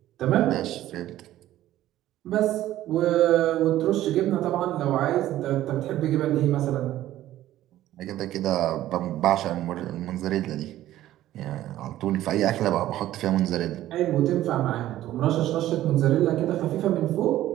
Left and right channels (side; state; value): left; quieter; 13.9 dB